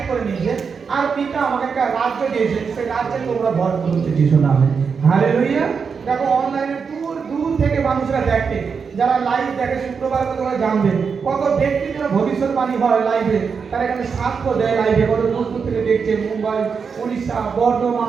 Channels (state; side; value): quieter; left; 5.8 dB